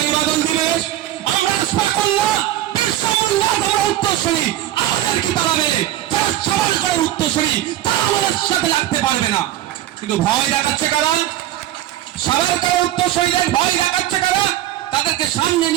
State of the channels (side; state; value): left; quieter; 13.5 dB